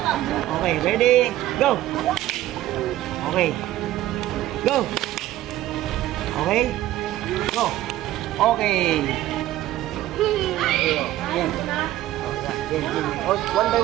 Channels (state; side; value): quieter; left; 14.6 dB